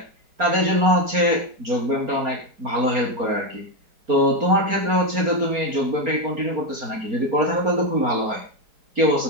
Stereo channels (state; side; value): late; left; 4.3 ms